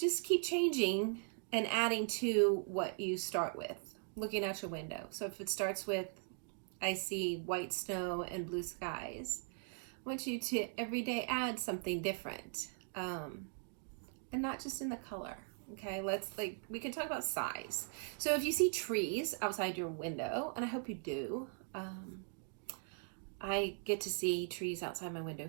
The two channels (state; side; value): silent; left; 51 dB below the other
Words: keep changing and adding to what you start with, looking out your window. So if it starts with, I see white snow and blue skies, I want you to every day add something different, and not just in the color. Okay, we can talk about size. So if you see trees outside your window, and I hope you do, I get to see trees outside my window